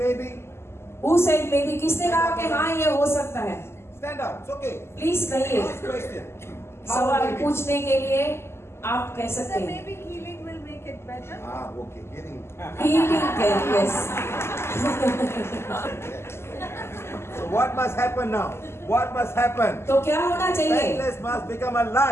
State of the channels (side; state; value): right; late; 0.12 ms